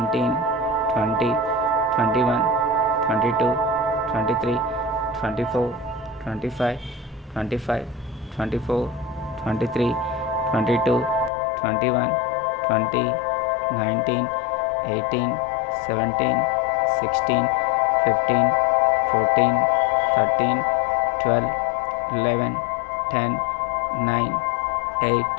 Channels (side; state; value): right; drops out; at 11.3 s